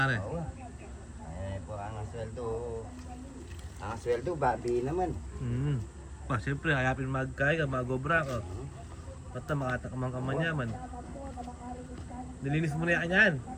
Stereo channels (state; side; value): identical; both; correlation 1.00